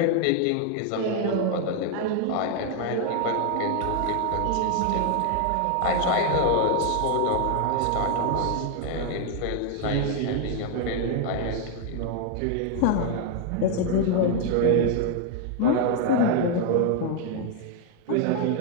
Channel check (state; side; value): different; both; correlation 0.00